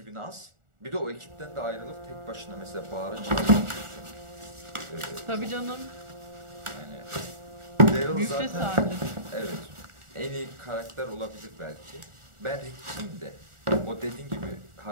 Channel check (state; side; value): late; left; 1.4 ms